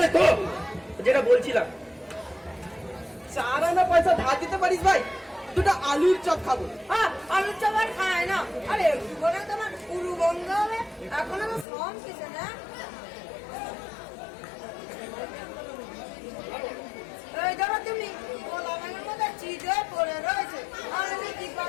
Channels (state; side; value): drops out; right; at 11.7 s